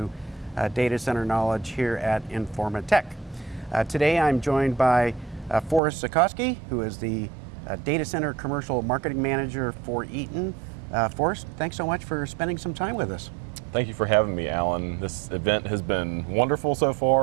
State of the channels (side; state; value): left; drops out; at 5.8 s